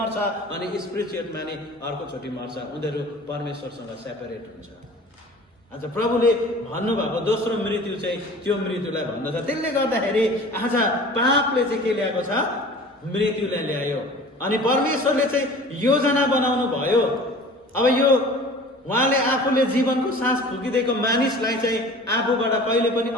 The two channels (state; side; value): normal; both; correlation 0.43